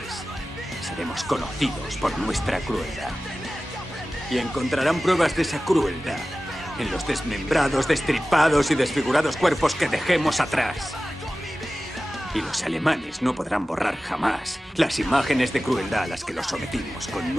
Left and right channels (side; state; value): both; normal; correlation 0.96